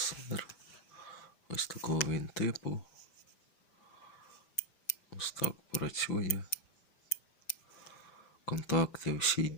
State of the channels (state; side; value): late; right; 5.1 ms